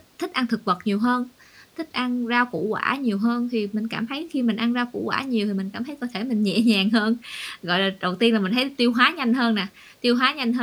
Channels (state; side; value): identical; both; correlation 1.00